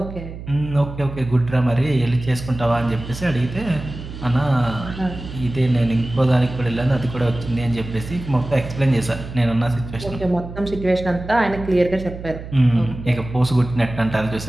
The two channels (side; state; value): right; noise; hum, 11 dB below the sound